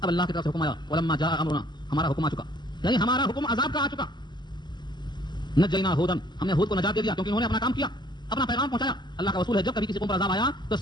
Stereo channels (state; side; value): late; right; 0.21 ms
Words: اب اللہ کی طرف سے حکم آیا, ولما جاء امرنا, ہمارا حکم آ چکا, یعنی ہمارا حکم عذاب کا آ چکا. نجینا ہودن, ہم نے ہود کو نجات دے دیا کیونکہ انہوں نے اپنا کام کیا, اپنا پیغام پہنچایا. اللہ کا اصول ہے جب کبھی کسی قوم پر عذاب آیا تو